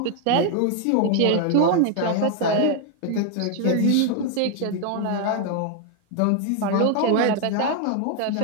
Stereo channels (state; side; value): different; both; correlation 0.00